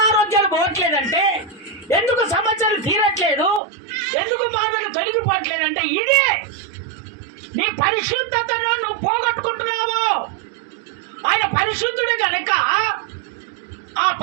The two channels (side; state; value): left; drops out; at 3.6 s